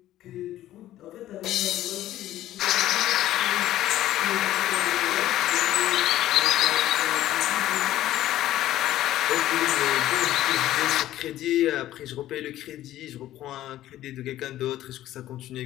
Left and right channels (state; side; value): quieter; right; 13.8 dB